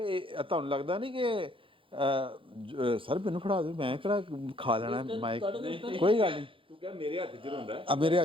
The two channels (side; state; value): left; late; 0.25 ms